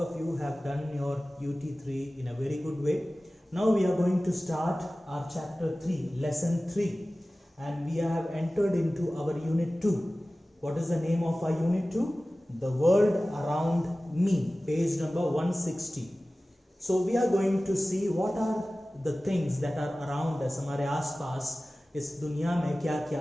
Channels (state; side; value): normal; both; correlation 0.97